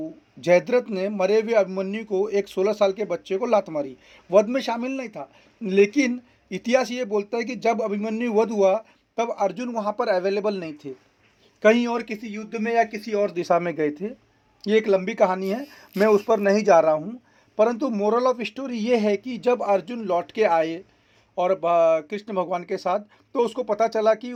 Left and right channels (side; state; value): both; identical; correlation 1.00